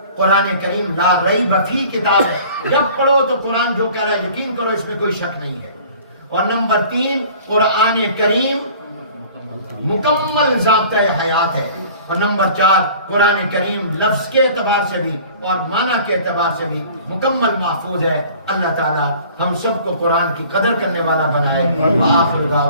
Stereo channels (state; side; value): inverted; both; correlation -0.48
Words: قرآن کریم لا ریب فی کتاب ہے، جب پڑھو تو قرآن جو کہہ رہا ہے یقین کرو، اس میں کوئی شک نہیں ہے۔ اور نمبر 3، قرآن کریم مکمل ضابطۂ حیات ہے۔ اور نمبر 4، قرآن کریم لفظ کے اعتبار سے بھی اور معنی کے اعتبار سے بھی مکمل محفوظ ہے۔ اللہ تعالی ہم سب کو قرآن کی قدر کرنے والا بنائے۔ وآخر